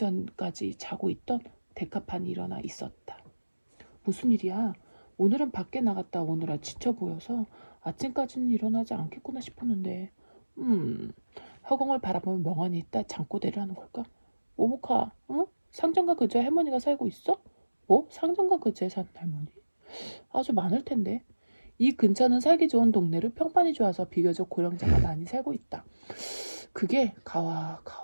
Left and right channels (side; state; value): both; inverted; correlation -1.00